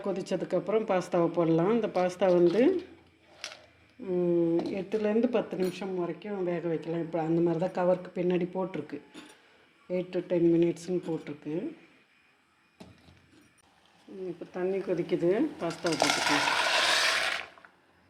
கொதித்ததுக்கப்புறம் பாஸ்தாவை போடலாம். இந்த பாஸ்தா 8லேருந்து 10 நிமிஷம் வரைக்கும் வேக வைக்கலாம். இப்போ அந்த மாதிரி தான் கவருக்கு பின்னாடி போட்டிருக்கு. 8 to 10 மினிட்ஸ்னு போட்டிருக்கு. இப்போ தண்ணி கொதிக்குது, பாஸ்தாவை போட்டுக்கலாம்.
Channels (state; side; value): identical; both; correlation 1.00